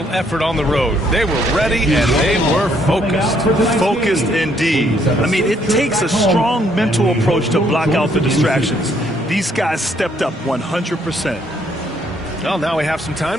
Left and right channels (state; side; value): normal; both; correlation 0.68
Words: effort on the road. They were ready and they were focused. Focused indeed. I mean, it takes a strong mental approach to block out the distractions. These guys stepped up 100%. Well, now we have some